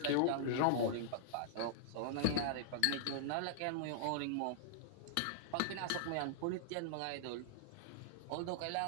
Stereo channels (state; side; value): different; both; correlation -0.01